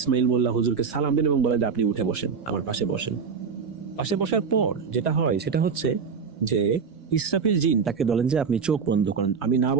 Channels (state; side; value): quieter; left; 5.8 dB